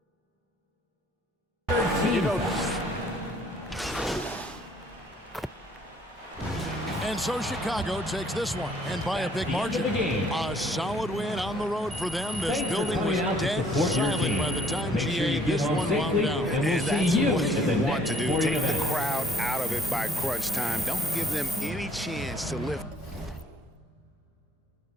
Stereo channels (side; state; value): both; normal; correlation 0.61